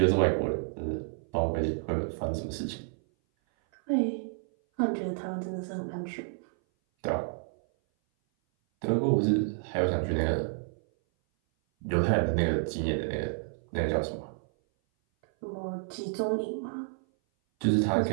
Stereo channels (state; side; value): silent; left; 57 dB below the other